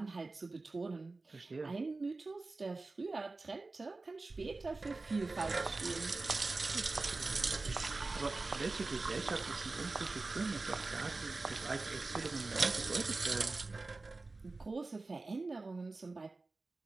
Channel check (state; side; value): quieter; left; 3.5 dB